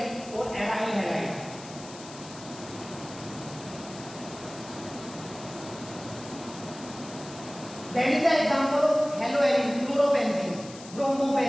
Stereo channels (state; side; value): noise; left; hiss, 16 dB below the sound